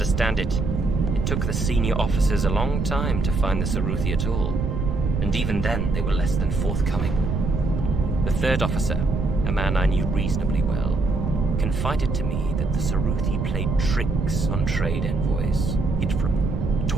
it, it took the senior officers a long time to find the Saruthi at all, and even then they were less than forthcoming. The third officer, a man I knew reasonably well, confided to me that the Saruthi played tricks on trade envoys, hid from them,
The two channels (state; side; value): noise; right; rumble, 1 dB below the sound